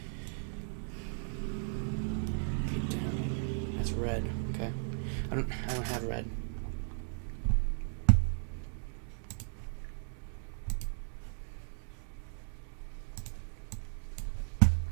That's red. Okay. I don't have red.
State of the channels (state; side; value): silent; left; 54 dB below the other